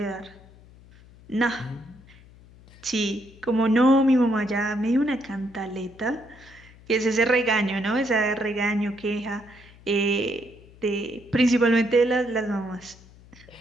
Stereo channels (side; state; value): left; noise; hum, 23 dB below the sound